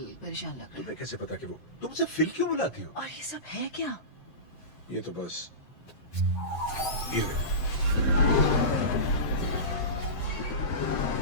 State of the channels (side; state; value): right; late; 7.7 ms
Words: परेशान लग रहा है। तुम्हें कैसे पता कि वो तुम मुझसे फिल क्यों बुलाती हो? और ये सब है क्या? ये तो बस ये है।